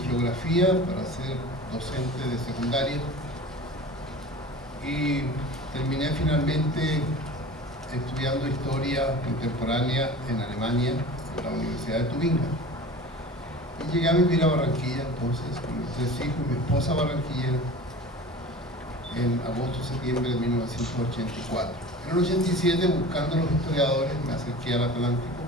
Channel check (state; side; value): normal; both; correlation 0.38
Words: Geografía para ser docente de secundaria y terminé finalmente estudiando Historia Contemporánea en Alemania, en la Universidad de Tubinga. Y llegué a vivir a Barranquilla entonces, con mis 3 hijos, mi esposa barranquillera, en agosto-septiembre de 1984. En el 87, buscando a los historiadores, me acerqué al Atlántico